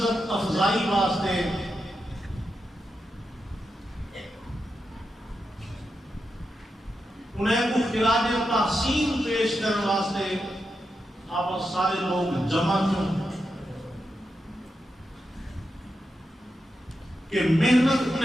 افزائی واسطے انہیں کو خراج تحسین پیش کرنے واسطے آپ سارے لوگ جمع کیوں کہ محنت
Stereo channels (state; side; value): normal; both; correlation 0.87